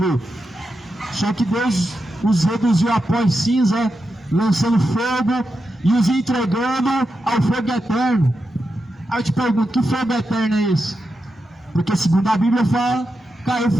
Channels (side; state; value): both; normal; correlation 0.88